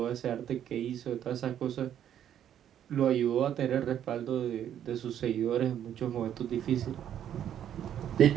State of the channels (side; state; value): left; quieter; 10.1 dB